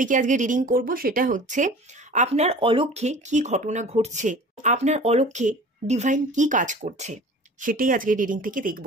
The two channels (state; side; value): normal; both; correlation 0.42